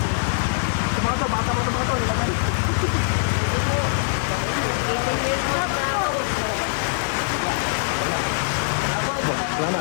to, bata mo ito mga to. Salamat.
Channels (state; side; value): silent; right; digital silence